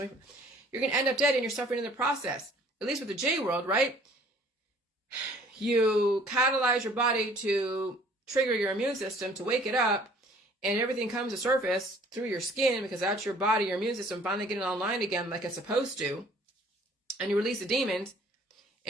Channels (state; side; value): normal; both; correlation 0.55